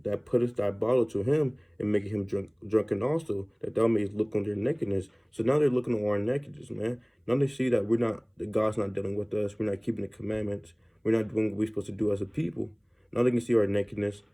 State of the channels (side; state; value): both; identical; correlation 1.00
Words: that putteth thy bottle to him, and maketh him drunken also, that thou mayest look on their nakedness. So now they're looking on our nakedness, man. Now they see that that God's not dealing with us. We're not keeping the commandments. We're not doing what we're supposed to do as a people. Now they can see our nakedness.